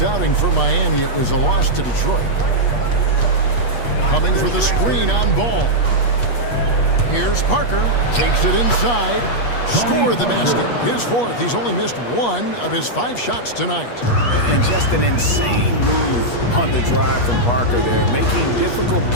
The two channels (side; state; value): right; late; 8.4 ms